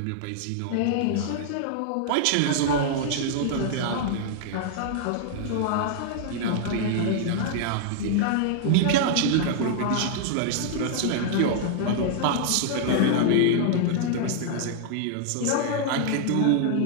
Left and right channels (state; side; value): different; both; correlation -0.01